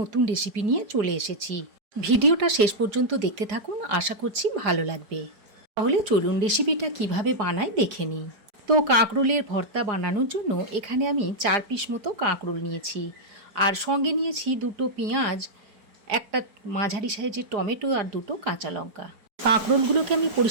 রেসিপি নিয়ে চলে এসেছি। ভিডিওটা শেষ পর্যন্ত দেখতে থাকুন, আশা করছি ভালো লাগবে। তাহলে চলুন রেসিপিটা কিভাবে বানাই দেখে নিই। তো কাঁকরোলের ভর্তা বানানোর জন্য এখানে আমি 4 পিস মতো কাঁকরোল নিয়েছি, আর সঙ্গে নিয়েছি 2টো পেঁয়াজ, একটা মাঝারি সাইজের টমেটো আর 2টো কাঁচা লঙ্কা। কাঁকরোলগুলোকে আমি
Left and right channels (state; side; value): late; left; 4.8 ms